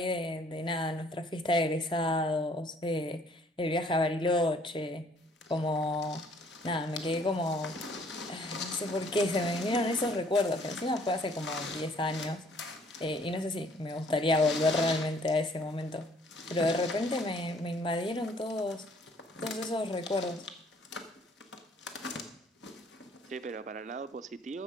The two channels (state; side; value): normal; both; correlation 0.60